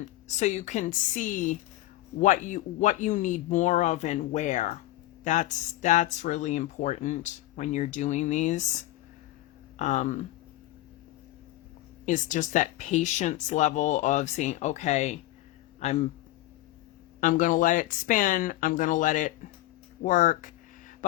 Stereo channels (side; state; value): right; quieter; 16.2 dB